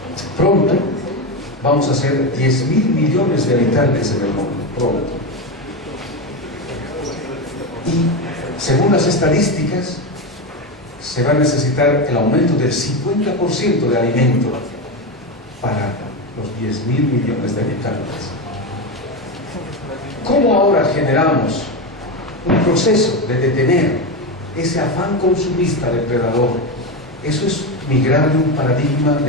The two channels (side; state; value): both; normal; correlation 0.15